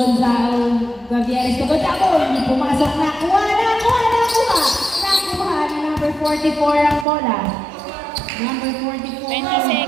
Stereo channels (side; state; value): left; drops out; at 7.1 s